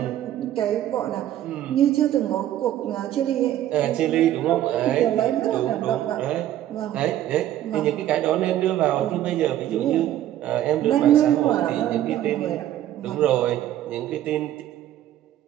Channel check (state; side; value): quieter; left; 12.5 dB